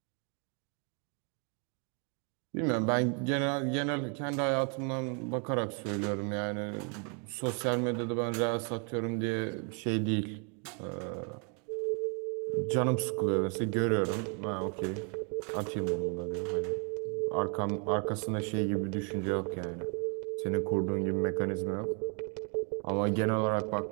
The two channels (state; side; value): quieter; left; 37.7 dB